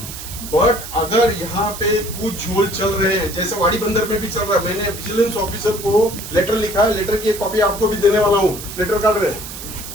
बट अगर यहाँ पे कुछ झोल चल रहे हैं, जैसे वाड़ी बंदर में भी चल रहा है, मैंने विजिलेंस ऑफिसर को लेटर लिखा है, लेटर की एक कॉपी आपको भी देने वाला हूँ, लेटर काट रहे हैं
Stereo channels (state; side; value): noise; right; hiss, 11 dB below the sound